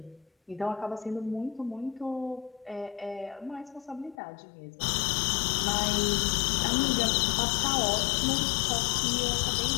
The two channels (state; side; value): drops out; right; at 4.2 s